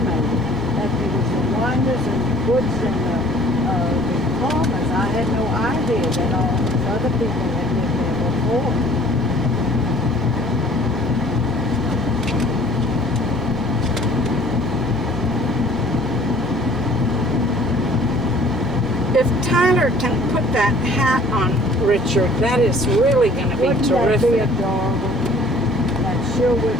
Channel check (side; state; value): both; normal; correlation 0.53